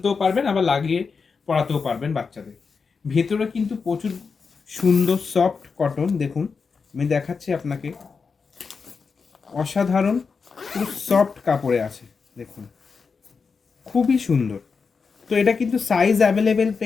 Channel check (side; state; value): right; quieter; 5.2 dB